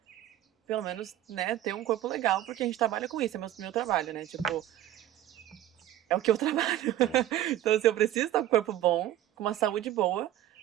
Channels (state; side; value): quieter; left; 13.0 dB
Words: pelo menos, né, ter um corpo legal, porque a gente trabalha com isso. É meu trabalho, né? Tipo, é o que eu trabalho. Então, assim, eu preciso estar com o corpo bom, com uma saúde boa,